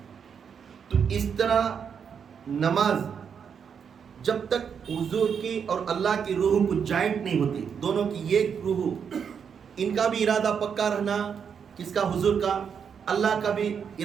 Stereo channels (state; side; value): quieter; left; 7.1 dB